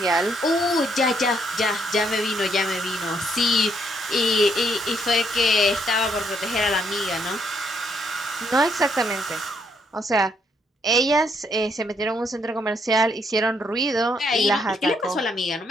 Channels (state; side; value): normal; both; correlation 0.72